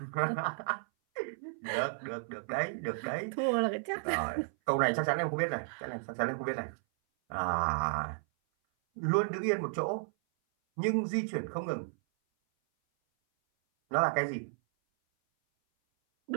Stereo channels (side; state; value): left; silent; 56 dB below the other